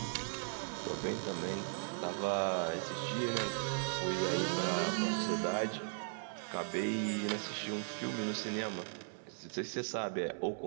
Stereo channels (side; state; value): left; silent; 53 dB below the other